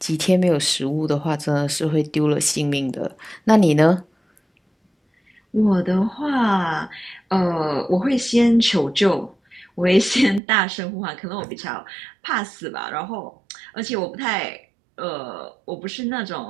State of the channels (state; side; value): drops out; left; at 10.4 s